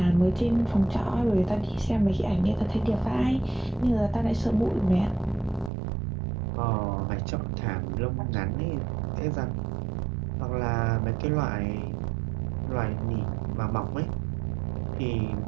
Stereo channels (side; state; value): left; drops out; at 5.7 s